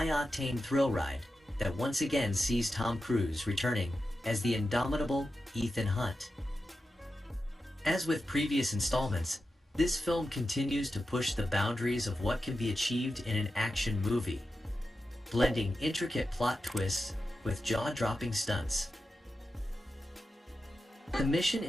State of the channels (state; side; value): normal; both; correlation 0.91